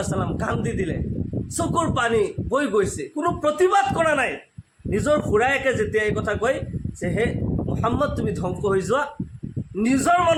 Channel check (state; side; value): identical; both; correlation 1.00